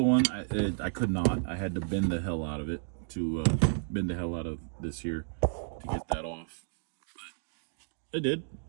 one, I could not. I had to bend the hell out of it to bend the hell out of this here to get that off. But I did.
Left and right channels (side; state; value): left; silent; digital silence